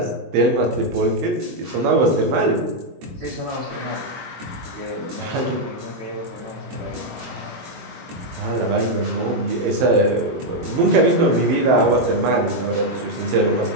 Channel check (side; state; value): left; late; 23 ms